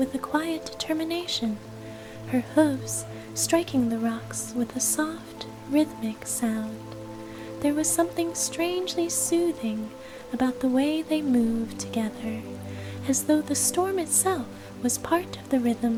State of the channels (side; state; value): both; identical; correlation 1.00